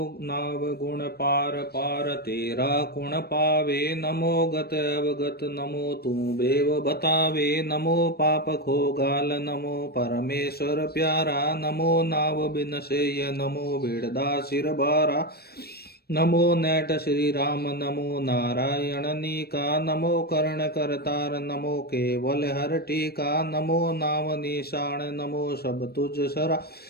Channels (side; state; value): right; late; 0.46 ms